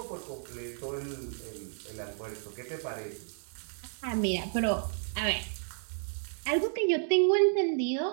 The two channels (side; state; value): left; silent; digital silence